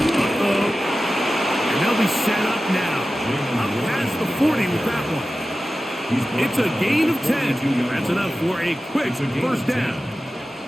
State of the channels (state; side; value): normal; both; correlation 0.94